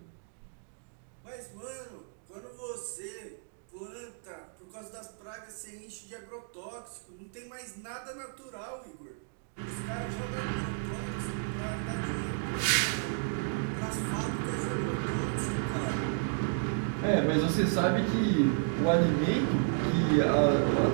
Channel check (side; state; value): left; silent; digital silence